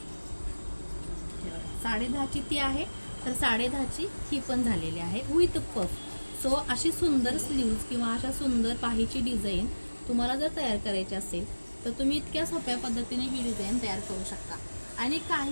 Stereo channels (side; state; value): both; inverted; correlation -1.00